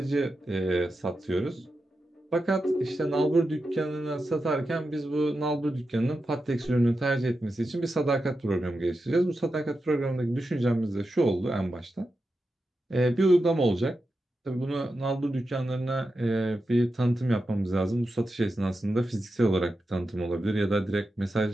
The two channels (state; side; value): normal; both; correlation 0.90